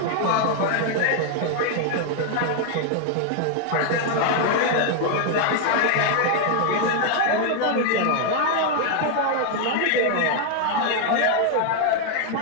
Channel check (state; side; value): different; both; correlation 0.00